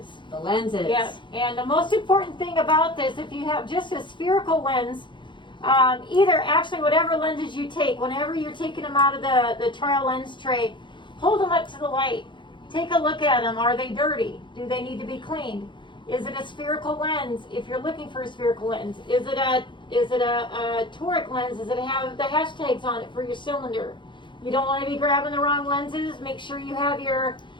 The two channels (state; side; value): late; right; 0.23 ms